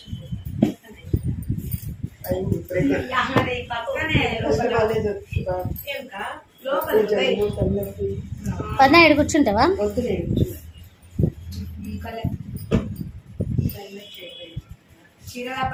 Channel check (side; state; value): both; identical; correlation 1.00